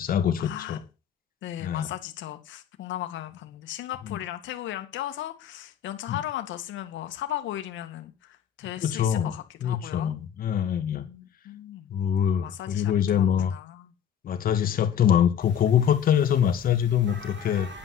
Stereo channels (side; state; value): right; quieter; 9.0 dB